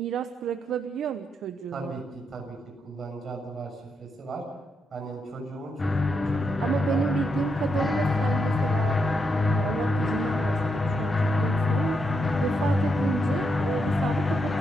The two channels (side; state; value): both; normal; correlation 0.81